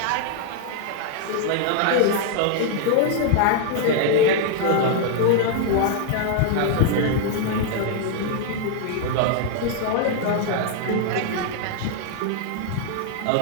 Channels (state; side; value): different; both; correlation 0.00